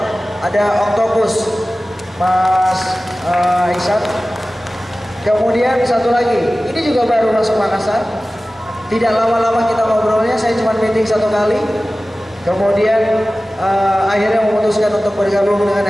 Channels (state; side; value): normal; both; correlation 0.96